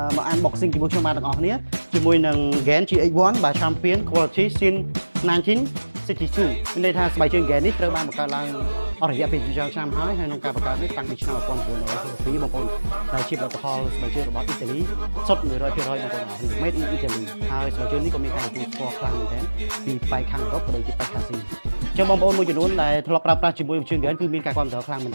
មក unboxing ជាមួយខ្ញុំបាទទាំងអស់គ្នាជាមួយនឹង GAN GX1 បាទ Champion Quality Sin 1962មានន័យថាស្បែកជើង GAN នេះត្រូវបានបង្កើតឡើងអស់រយៈពេលជាច្រើនឆ្នាំហើយក្នុងការបង្កើតនេះតាំងពីឆ្នាំ1962បងប្អូនដែលជាផលិតផលស្បែកជើងរបស់អ៊ីតាលីសុទ្ធ 100% បងប្អូនអរគ្នា Made in Italy ហើយស្បែកជើងនេះក៏មានការទទួលស្គាល់ខ្លាំងមែនទែនពីប៉ែកខាងអឺរ៉ុបក៏ដូចជាប៉ែកខាងអាស៊ីអញ្ចឹងបងប្អូនមួយចំនួនដែលធ្លាប់ប្រើប្រាស់ជាមួយជើង GAN គឺមានការគាំទ្រខ្លាំងមែន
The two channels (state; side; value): inverted; both; correlation -1.00